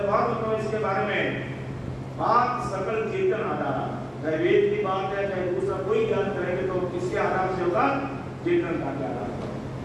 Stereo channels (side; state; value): both; identical; correlation 1.00